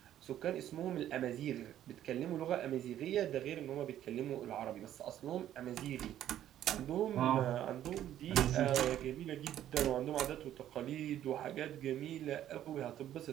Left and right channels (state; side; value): quieter; left; 11.7 dB